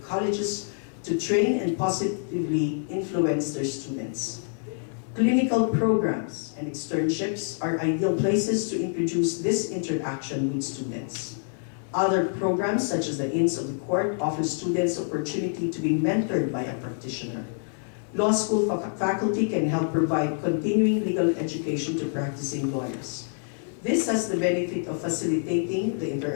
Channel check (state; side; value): silent; right; 60 dB below the other